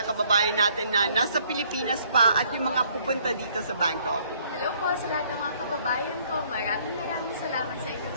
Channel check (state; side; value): inverted; both; correlation -0.63